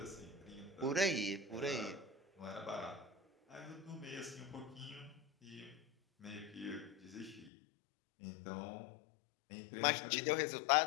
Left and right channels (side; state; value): right; drops out; at 7.5 s